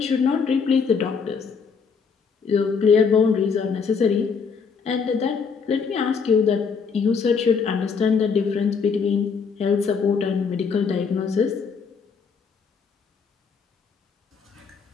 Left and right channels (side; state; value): right; quieter; 5.7 dB